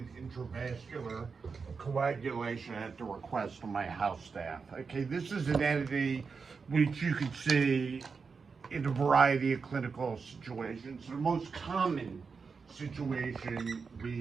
intravascular coagulation at the request of my house staff. Okay, this is an entity which you can see in a variety of clinical situations. The most common situation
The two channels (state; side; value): quieter; left; 5.1 dB